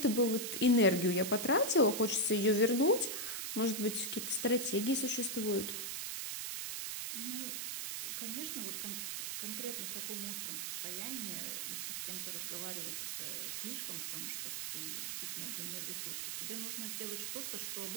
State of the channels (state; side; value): noise; right; hiss, 3 dB below the sound